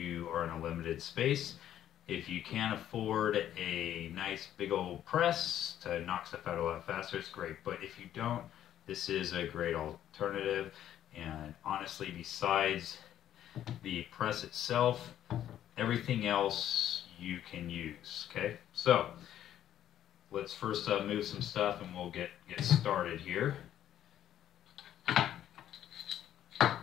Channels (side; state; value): right; quieter; 11.3 dB